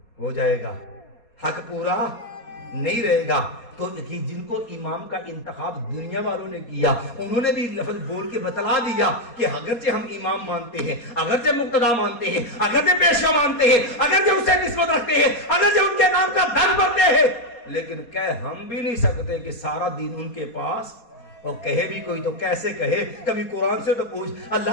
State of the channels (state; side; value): late; right; 4.2 ms